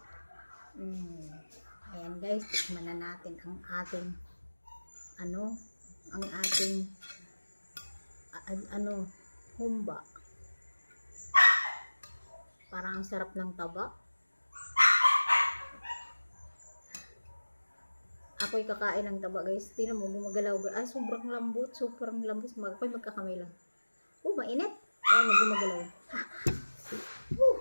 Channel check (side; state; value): both; inverted; correlation -1.00